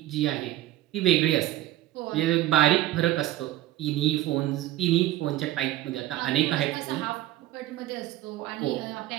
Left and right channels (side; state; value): left; quieter; 15.1 dB